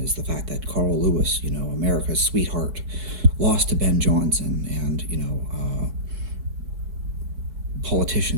is the fact that Carl Lewis, America's sweetheart, lost to Ben Johnson, and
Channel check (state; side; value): late; left; 4.9 ms